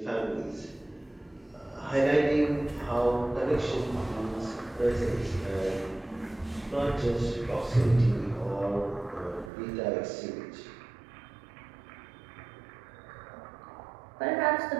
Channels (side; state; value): left; drops out; at 9.5 s